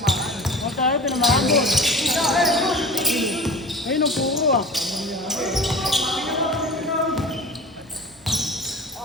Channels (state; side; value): normal; both; correlation 0.37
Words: Huwag tayo, pinamana ko. Ayun ang puro ah.